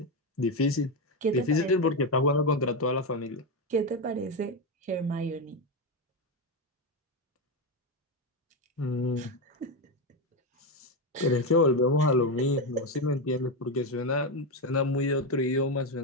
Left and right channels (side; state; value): both; normal; correlation 0.10